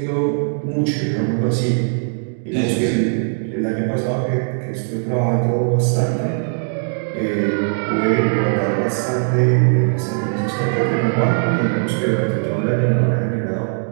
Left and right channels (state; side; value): silent; left; 66 dB below the other